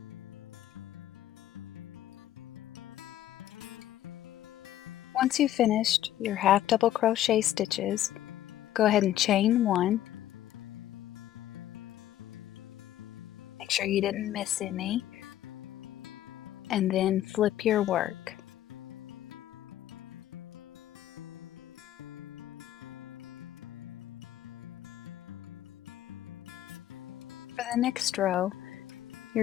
Once you've finished your half double crochet stitches, go ahead and chain one. Make sure you didn't miss any, and then flip your work. For the next row,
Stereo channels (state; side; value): quieter; right; 12.7 dB